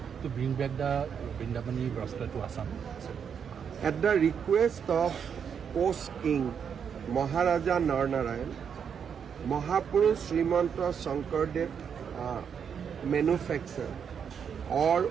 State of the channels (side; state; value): left; quieter; 7.3 dB